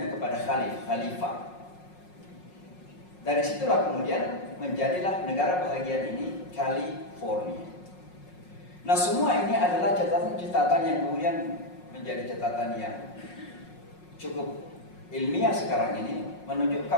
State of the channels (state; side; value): late; right; 5.5 ms